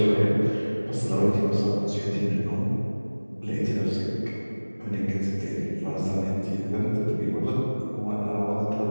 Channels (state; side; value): inverted; both; correlation -1.00